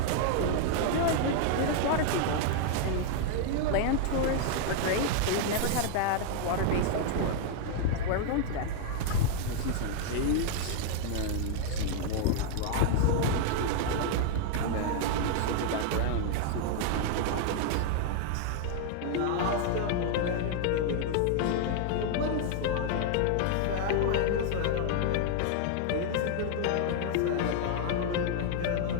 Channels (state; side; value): different; both; correlation 0.00